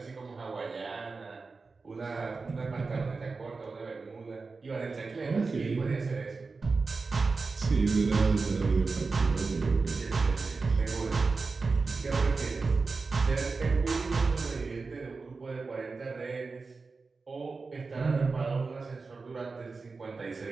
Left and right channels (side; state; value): left; quieter; 4.2 dB